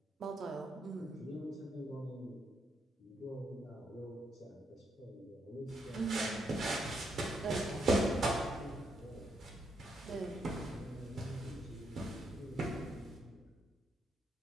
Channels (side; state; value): both; normal; correlation 0.77